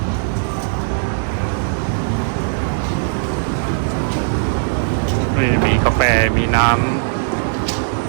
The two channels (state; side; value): silent; left; digital silence